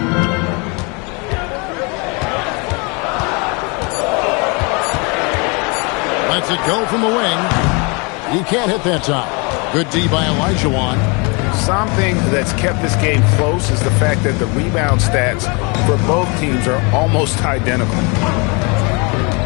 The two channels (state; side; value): quieter; right; 30.9 dB